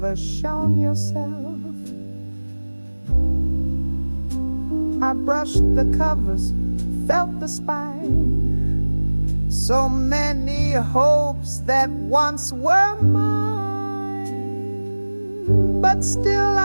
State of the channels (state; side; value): inverted; both; correlation -1.00